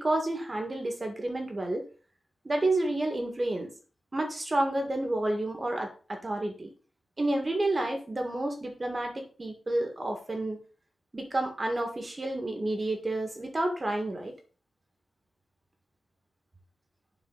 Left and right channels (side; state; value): both; normal; correlation 0.95